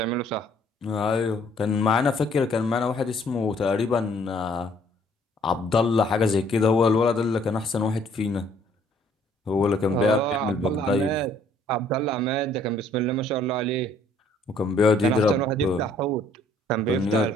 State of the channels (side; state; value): both; normal; correlation 0.62